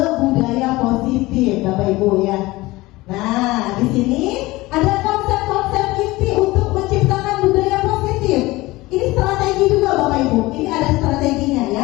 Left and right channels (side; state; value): right; quieter; 20.0 dB